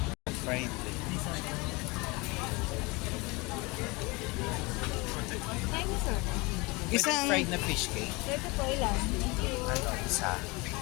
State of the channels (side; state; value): right; quieter; 25.7 dB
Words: Fried. Isang... Fried na fish cake. Ito po ilan? Ano, isa.